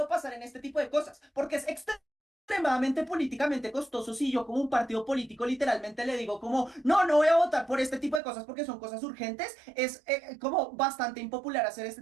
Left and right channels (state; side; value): drops out; left; at 8.2 s